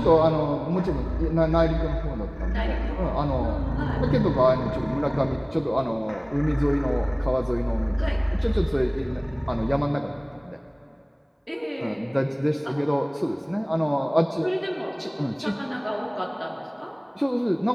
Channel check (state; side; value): identical; both; correlation 1.00